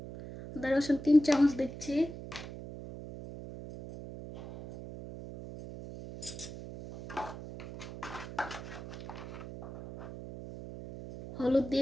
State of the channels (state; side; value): noise; right; hum, 11 dB below the sound